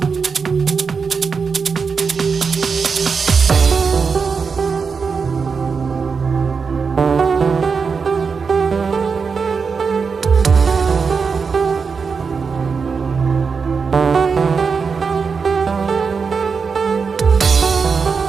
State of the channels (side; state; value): left; quieter; 5.4 dB